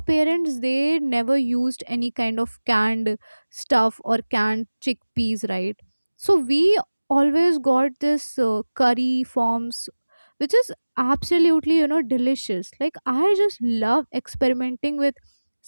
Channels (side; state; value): both; inverted; correlation -1.00